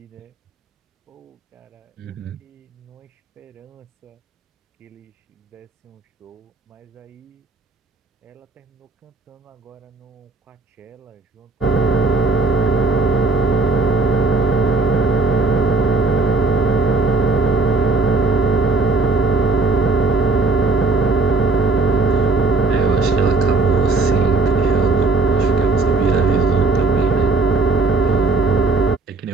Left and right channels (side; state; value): left; quieter; 4.0 dB